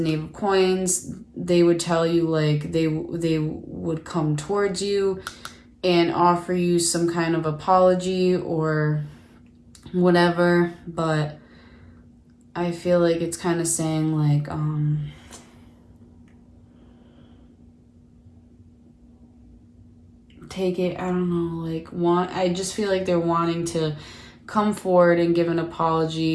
Knave of Coins. They would tell you, like, they would come towards you and offer you some kind of apology or whatever. But I feel like it's kind of saying, like, take it, I don't know, like, I just feel like they're wanting to come forward and give an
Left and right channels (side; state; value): both; identical; correlation 1.00